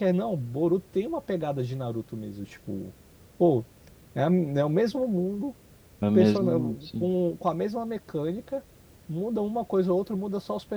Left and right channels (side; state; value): both; identical; correlation 1.00